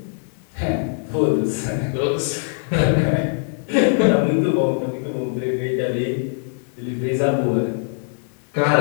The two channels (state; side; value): silent; right; digital silence